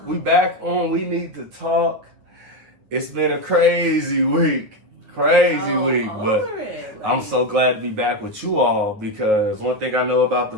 We back on We Need to Talk. It's been a crazy week. But I'm so glad to be back with you all because one thing I know about the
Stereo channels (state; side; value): late; left; 9.4 ms